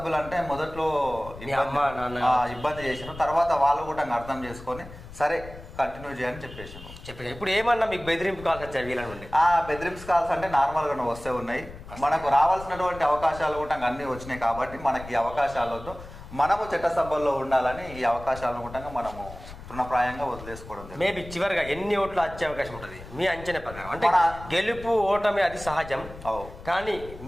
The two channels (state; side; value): noise; left; rumble, 15 dB below the sound